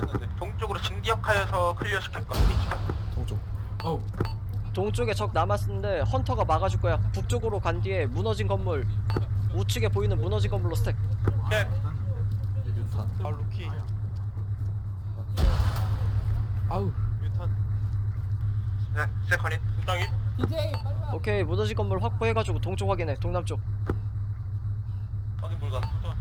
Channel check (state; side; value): identical; both; correlation 1.00